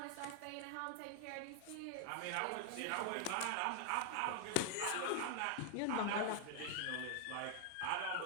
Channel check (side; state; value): both; different; correlation 0.00